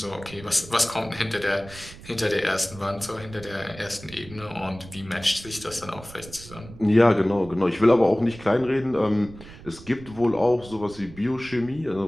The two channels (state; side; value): noise; right; rumble, 17 dB below the sound